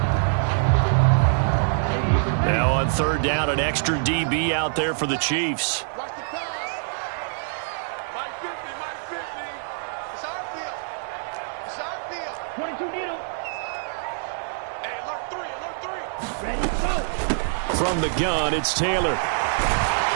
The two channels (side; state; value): left; silent; digital silence